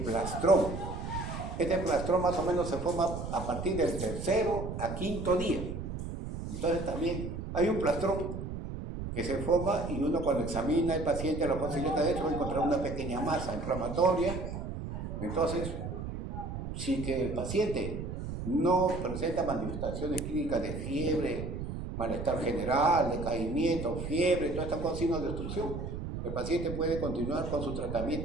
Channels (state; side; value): noise; right; rumble, 6 dB below the sound